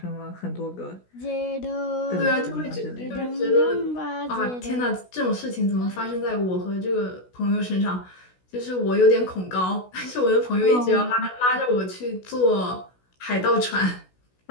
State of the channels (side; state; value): right; late; 16 ms